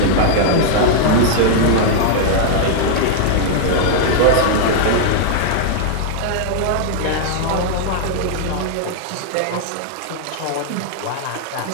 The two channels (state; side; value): different; both; correlation -0.01